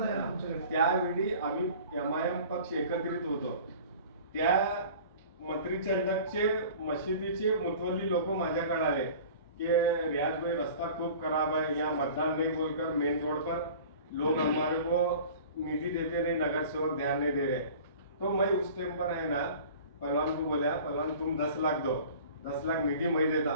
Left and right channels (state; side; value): inverted; both; correlation -0.43